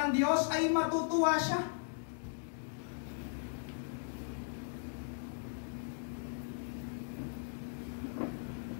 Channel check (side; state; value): right; silent; digital silence